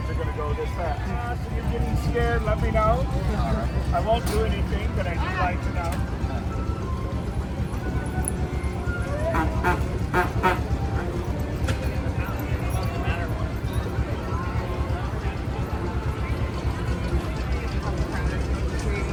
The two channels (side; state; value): both; identical; correlation 1.00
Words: are going to go this fast. If you're getting scared, let me know. I won't do anything, but I do like to know.